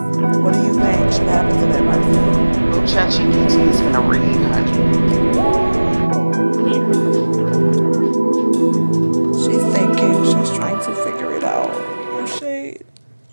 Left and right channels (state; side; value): inverted; both; correlation -1.00